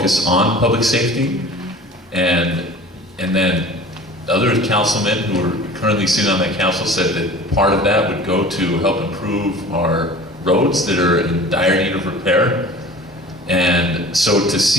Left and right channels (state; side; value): normal; both; correlation 0.42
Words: on public safety, and then other councilmen who are currently sitting on that council said that part of that would go to help improve our roads that are in dire need of repair. And so to